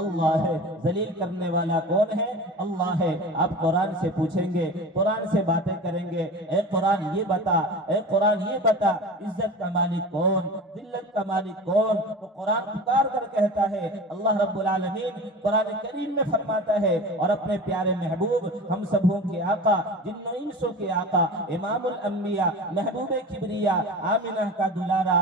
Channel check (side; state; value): both; normal; correlation 0.34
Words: اللہ ہے، ذلیل کرنے والا کون ہے، اللہ ہے۔ آپ قرآن سے پوچھیں گے، قرآن سے باتیں کریں گے، اے قرآن یہ بتا، اے قرآن یہ بتا، عزت کا مالک کون، ذلت کا مالک کون؟ تو قرآن پکار کر کہتا ہے، اللہ رب العالمین قرآن کریم میں فرماتا ہے، اور اپنے پیارے محبوب ہم سبوں کے آقا، جن و انسوں کے آقا، امام الانبیاء، محبوب کبریا، آمنہ کا دلارا،